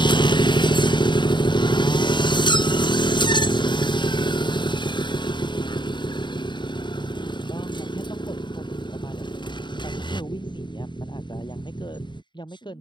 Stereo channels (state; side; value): late; right; 0.22 ms